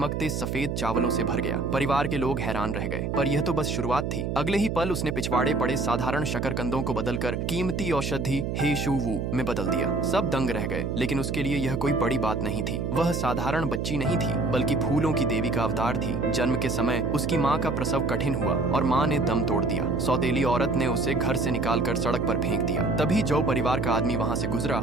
सफेद चावलों से भर गया। परिवार के लोग हैरान रह गए, पर यह तो बस शुरुआत थी। अगले ही पल उसने पिछवाड़े पड़े साधारण शकरकंदों को बदलकर कीमती औषधि हे शू वू में बदल दिया। सब दंग रह गए, लेकिन उसके लिए यह कोई बड़ी बात नहीं थी। वह साधारण बच्ची नहीं थी, बल्कि फूलों की देवी का अवतार थी। जन्म के समय उसकी माँ का प्रसव कठिन हुआ और माँ ने दम तोड़ दिया। सौतेली औरत ने उसे घर से निकालकर सड़क पर फेंक दिया। तभी जौ परिवार का आदमी वहाँ से गुजरा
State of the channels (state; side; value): noise; right; hum, 2 dB below the sound